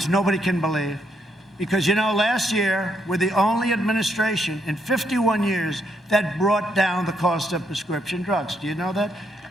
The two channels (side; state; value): both; normal; correlation 0.75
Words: nobody can believe. Because, you know, last year, we're the only administration in 51 years that brought down the cost of prescription drugs. Do you know that?